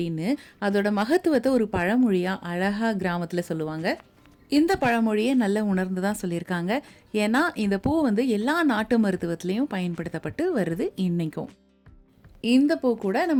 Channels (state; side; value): identical; both; correlation 1.00